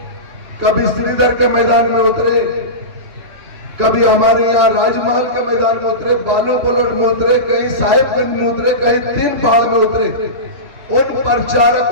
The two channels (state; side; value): late; left; 3.1 ms